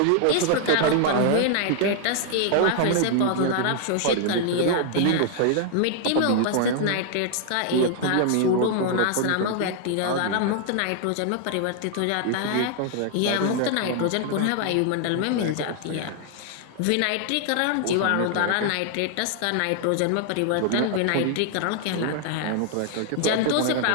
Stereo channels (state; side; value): different; both; correlation 0.00